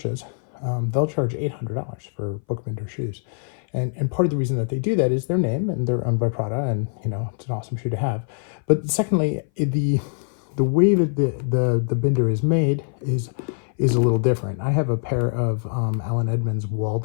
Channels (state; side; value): silent; right; 59 dB below the other